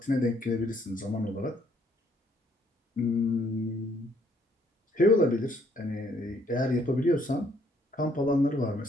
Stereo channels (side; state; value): both; normal; correlation 0.67